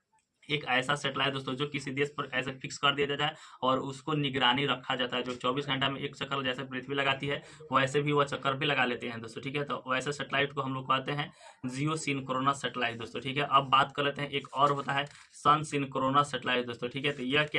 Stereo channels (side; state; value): both; identical; correlation 1.00